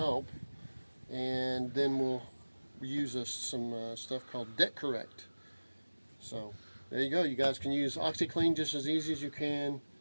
And then we'll use some stuff called Deck Correct. So there you go. You guys can use Oxi-clean just as easy as you can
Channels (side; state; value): both; inverted; correlation -1.00